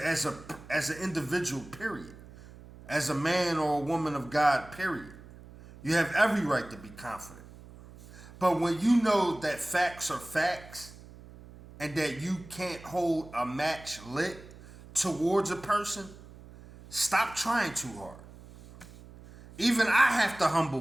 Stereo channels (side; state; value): right; noise; hum, 19 dB below the sound